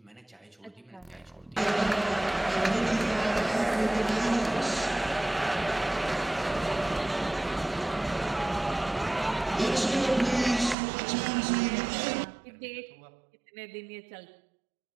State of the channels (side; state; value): left; drops out; at 10.8 s